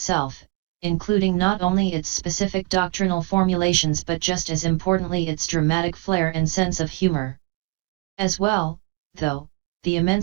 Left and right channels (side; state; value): left; quieter; 25.6 dB